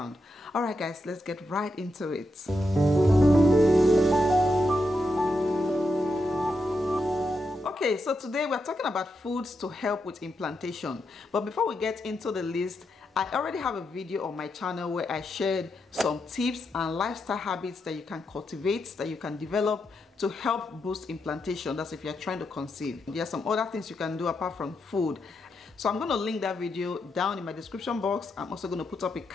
All right guys, let's get right into it. Okay, so today we're talking about foods to help with implantation. But before we get into the list, I already have a video on my channel where I shared some tips and lifestyle habits that you can cultivate, that you can develop to help boost implantation. That's if you're trying to conceive. There are some other things you can do apart from food. So I'm going to link that video down in my description box. I'm also going to put up a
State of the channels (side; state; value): both; normal; correlation 0.84